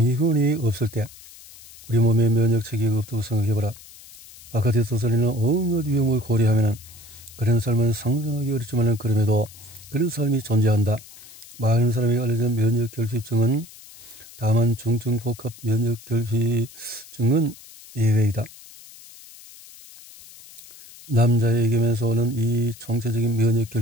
없을 때 우리 몸에 면역 체계가 없다고 생각해보라. 바깥에 떠돌리는 온갖 위험을 고려하면 그런 삶은 상상하기 어렵지만 그럼에도 그런 삶이 존재한다. 많은 사람이 알려진 면역 결핍증은 다만 중증 복합 면역 결핍증은 예외이다. 남자에게면서 오는 이 총체적인 면역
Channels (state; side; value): noise; left; hiss, 20 dB below the sound